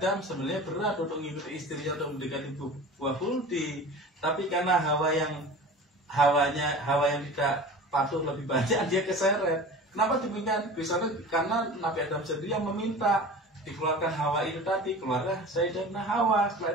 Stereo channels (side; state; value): both; normal; correlation 0.37